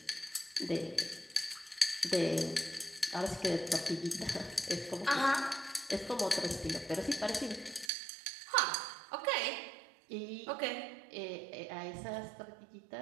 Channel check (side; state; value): left; drops out; at 7.9 s